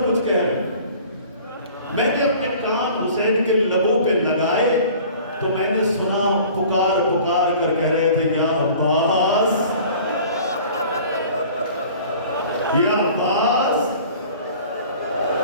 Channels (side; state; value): both; inverted; correlation -0.47